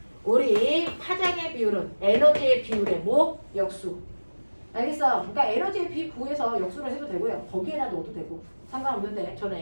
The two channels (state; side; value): inverted; both; correlation -1.00